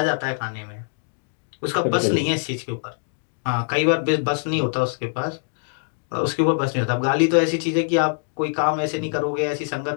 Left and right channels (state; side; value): silent; right; digital silence